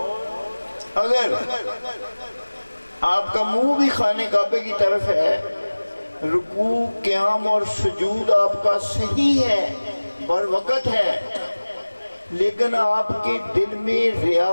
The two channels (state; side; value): inverted; both; correlation -1.00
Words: اگر آپ کا منہ بھی خانہ کعبے کی طرف ہے، رکوع قیام اور سجود آپ کا صحیح ہے، بر وقت ہے، لیکن آپ کے دل میں